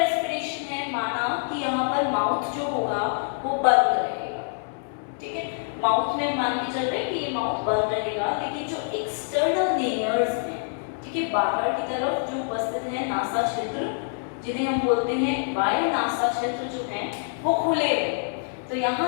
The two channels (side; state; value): right; silent; 61 dB below the other